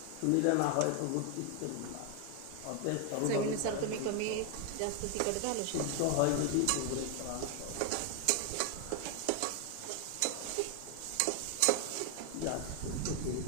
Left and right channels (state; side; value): different; both; correlation 0.00